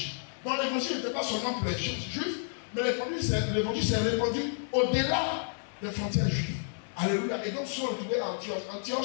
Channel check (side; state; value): right; silent; digital silence